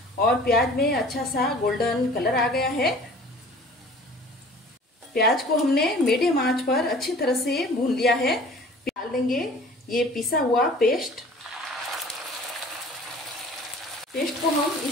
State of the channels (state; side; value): normal; both; correlation 0.47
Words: और प्याज में अच्छा सा गोल्डन कलर आ गया है। प्याज को हमने मीडियम आंच पर अच्छी तरह से भून लिया है। डाल देंगे ये पिसा हुआ पेस्ट। पेस्ट को हम